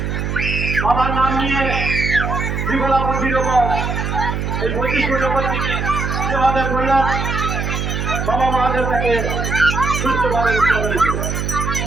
বাবার নাম নিয়ে বিমলা মন্দির ওপর এই 25 ফুট ওপর থেকে যেভাবে করলাম বাবা মহাদেব তাকে সুস্থভাবে রক্ষা করেছে।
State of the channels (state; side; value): noise; right; hum, 2 dB below the sound